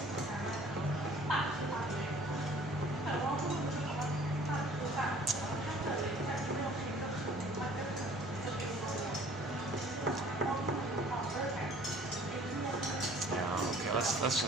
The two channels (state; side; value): normal; both; correlation 0.52